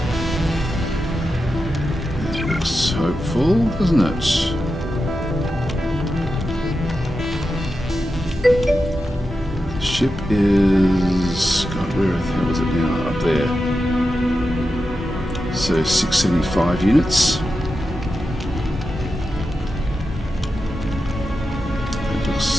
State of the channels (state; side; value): normal; both; correlation 0.90